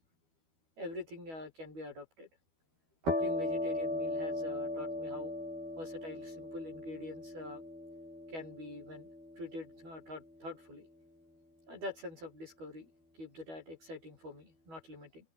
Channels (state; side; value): late; left; 12 ms